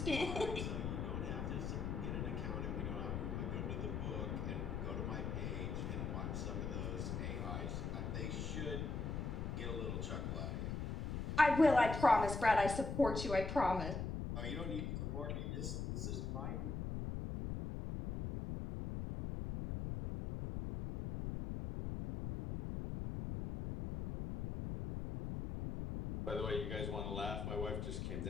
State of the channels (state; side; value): noise; left; rumble, 2 dB below the sound